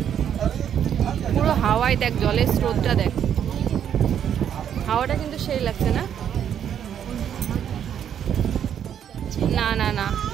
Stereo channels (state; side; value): quieter; left; 9.1 dB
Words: পুরো হাওয়ায় দেখ, জলের স্রোতটা দেখ। হাওয়াটা কিন্তু সেই লাগছে না? না না না,